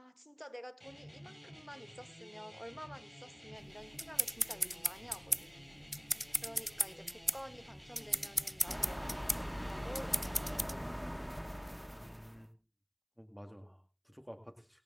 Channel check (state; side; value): identical; both; correlation 1.00